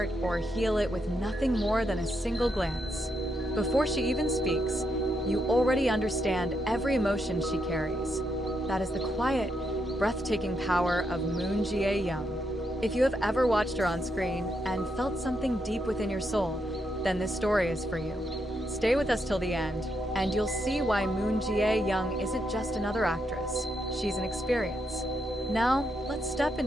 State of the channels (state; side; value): normal; both; correlation 0.80